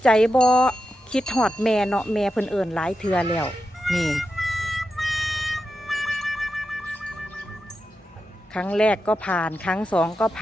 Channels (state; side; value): normal; both; correlation 0.89